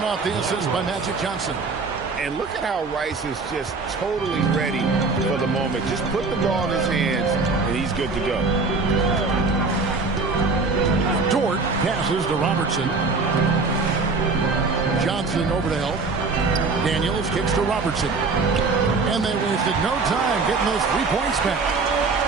off the assist by Magic Johnson. And look at how Rice is just totally ready for the moment. Just put the ball in his hands, and he's good to go. Dort passes to Robertson. Johnson over to help. Daniels kicks to Robertson. And they wasted no time getting those 3 points back.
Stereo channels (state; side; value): quieter; left; 4.1 dB